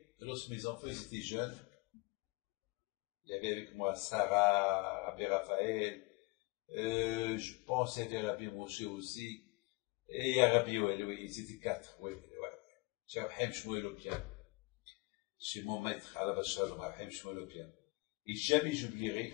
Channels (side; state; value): right; quieter; 25.3 dB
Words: lorsque mes enfants ils étaient jeunes, il y avait avec moi Sarah, Rabbi Raphaël, je pense qu'il y avait Rabbi Moshe aussi, et il y a Rabbi Yoel, oui, ils étaient 4, oui. J'ai Rahim Shmuel au piano. Chez mon maître, à la Bachar, Rahim Shmuel au piano. Et jamais